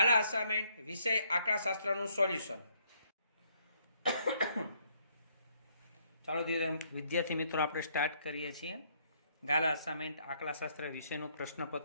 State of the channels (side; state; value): both; inverted; correlation -0.69